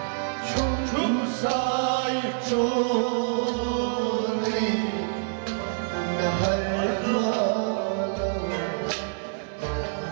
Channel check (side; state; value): left; silent; 61 dB below the other